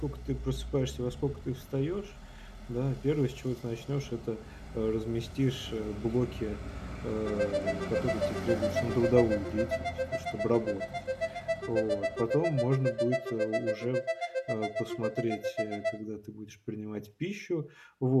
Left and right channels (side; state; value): both; identical; correlation 1.00